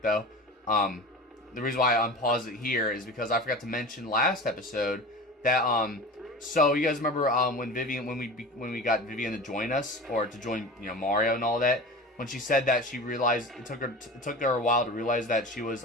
The reason why I unpaused it here is because I forgot to mention last episode that, so you guys remember, when we got Vivian to join us, or to join, you know, Mario and all that, when she said that she realized it took her a while to realize that she was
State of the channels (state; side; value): normal; both; correlation 0.33